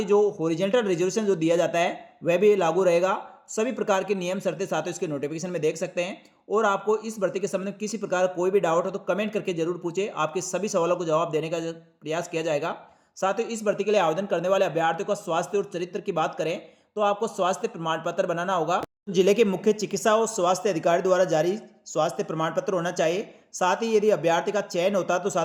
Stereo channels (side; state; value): both; identical; correlation 1.00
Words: जो हॉरिजॉन्टल रिजर्वेशन जो दिया जाता है वह भी लागू रहेगा। सभी प्रकार के नियम शर्तें साथियों इसके नोटिफिकेशन में देख सकते हैं। और आपको इस भर्ती के संबंध में किसी प्रकार कोई भी डाउट हो तो कमेंट करके जरूर पूछे, आपके सभी सवालों को जवाब देने का प्रयास किया जाएगा। साथ ही इस भर्ती के लिए आवेदन करने वाले अभ्यर्थियों का स्वास्थ्य और चरित्र की बात करें तो आपको स्वास्थ्य प्रमाण पत्र बनाना होगा। जिले के मुख्य चिकित्सा और स्वास्थ्य अधिकारी द्वारा जारी स्वास्थ्य प्रमाण पत्र होना चाहिए। साथ ही यदि अभ्यर्थी का चयन होता है तो